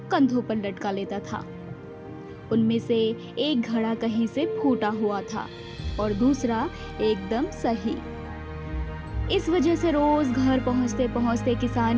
कंधों पर लटका लेता था। उनमें से एक घड़ा कहीं से फूटा हुआ था और दूसरा एकदम सही। इस वजह से रोज घर पहुंचते पहुंचते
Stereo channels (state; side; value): identical; both; correlation 1.00